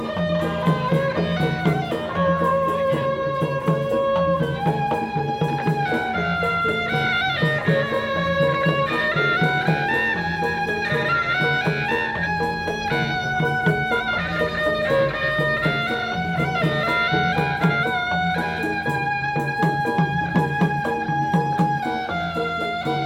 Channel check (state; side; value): identical; both; correlation 1.00